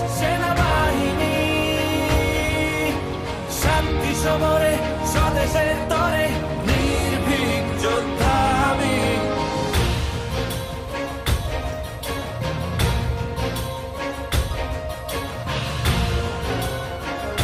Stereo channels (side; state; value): both; identical; correlation 1.00